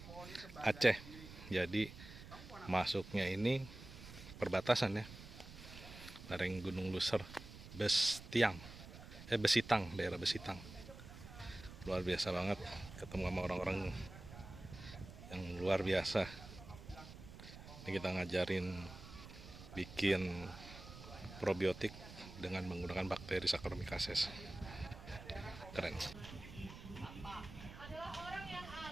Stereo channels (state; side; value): noise; right; rumble, 14 dB below the sound